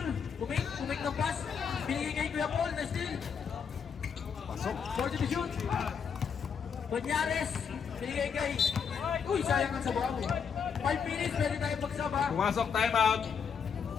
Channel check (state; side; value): quieter; right; 6.7 dB